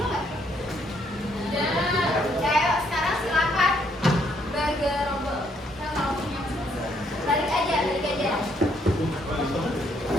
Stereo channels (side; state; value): both; normal; correlation 0.70